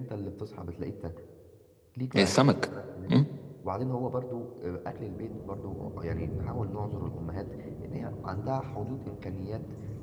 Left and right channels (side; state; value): both; identical; correlation 1.00